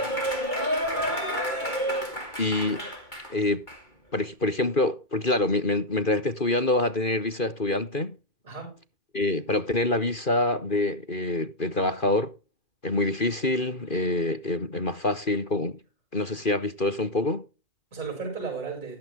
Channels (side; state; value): right; late; 2.2 ms